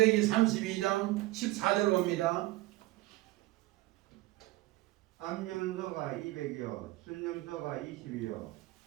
32장 14절 봅니다. 암염소가 200이요 순염소가 20이요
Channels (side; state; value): left; quieter; 19.1 dB